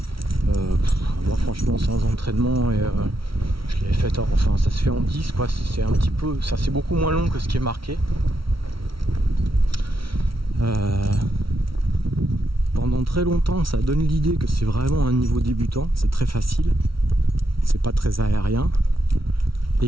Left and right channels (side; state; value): left; late; 0.75 ms